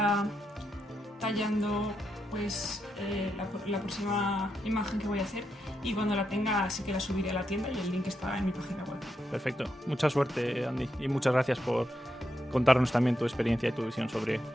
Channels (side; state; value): both; normal; correlation 0.83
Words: tallando pues la próxima imagen que voy a hacer, y cuando la tenga sí que la subiré a la tienda, y el link está en mi página web. Perfecto, mucha suerte, Andy, y muchas gracias por contarnos también tu experiencia y tu visión sobre